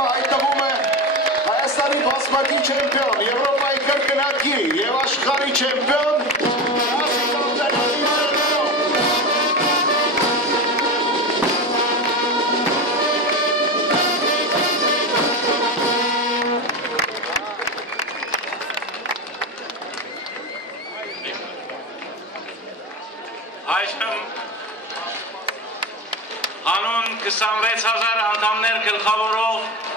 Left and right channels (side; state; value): both; normal; correlation 0.22